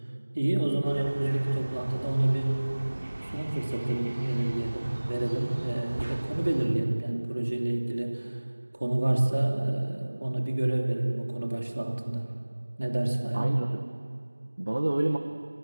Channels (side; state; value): both; inverted; correlation -1.00